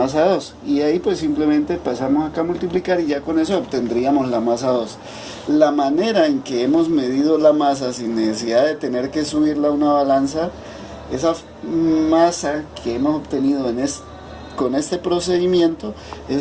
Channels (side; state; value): both; identical; correlation 1.00